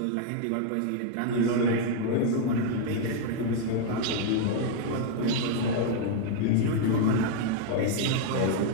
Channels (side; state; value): both; different; correlation 0.00